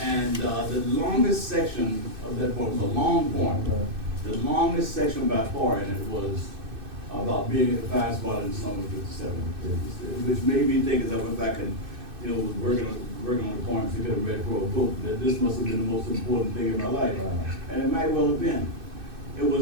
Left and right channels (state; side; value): late; left; 2.6 ms